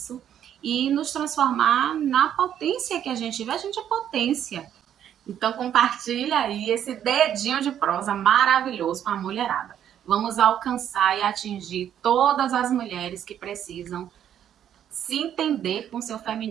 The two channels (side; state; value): left; quieter; 10.0 dB